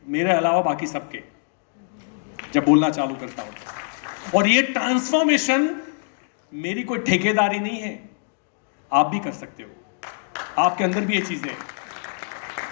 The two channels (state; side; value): silent; right; digital silence